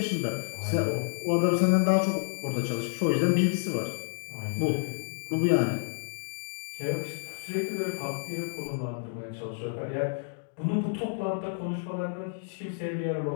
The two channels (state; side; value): silent; right; digital silence